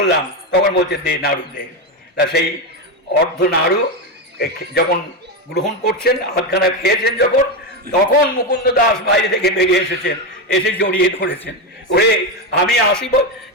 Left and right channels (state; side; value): normal; both; correlation 0.12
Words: তখন বলছে, দে নাড়ু দে। তা সেই অর্ধ নাড়ু যখন গ্রহণ করছেন, হাতখানা খেয়েছেন যখন, তখন মুকুন্দ দাস বাইরে থেকে বেরিয়ে এসেছেন, এসে জড়িয়ে ধরেছেন। ওরে আমি 80